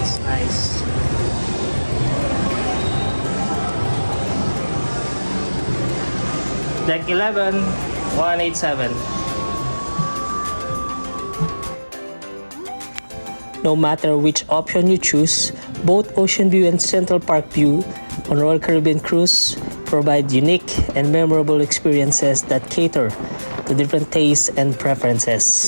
nice. Deck 11187. No matter which option you choose, both Ocean View and Central Park View on Royal Caribbean Cruise provide unique and memorable experiences that cater to different tastes and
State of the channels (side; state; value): both; inverted; correlation -1.00